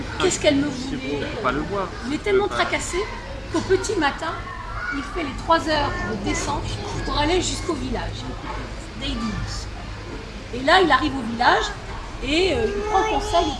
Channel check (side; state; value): both; identical; correlation 1.00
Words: Qu'est-ce qu'elle me voulait? Il est tellement tracassé qu'au petit matin, il fait les 3 heures de descente pour aller jusqu'au village d'Eidis. Et là, il arrive au village et il prend conseil